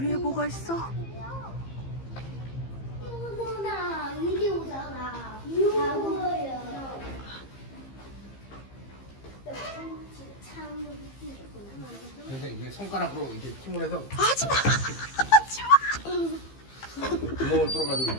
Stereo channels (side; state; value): right; late; 15 ms